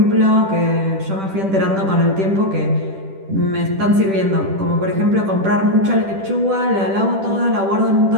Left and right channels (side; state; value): left; late; 10 ms